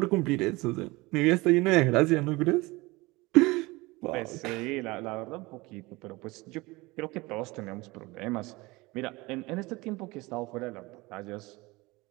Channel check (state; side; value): quieter; left; 22.4 dB